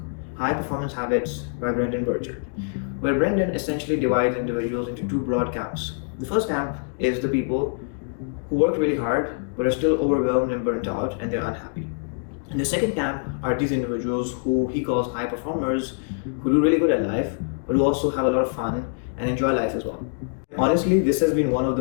High Performance Habits by Brendon Burchard, where Brendon essentially divides individuals into two broad camps. The first camp is the people who work really hard but are still overwhelmed and burnt out and they're unhappy. And the second camp are these individuals who he calls high performers, who do really good at life but who also have a lot of fun and enjoy life as well. Honestly, this has been one of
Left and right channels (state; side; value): silent; right; digital silence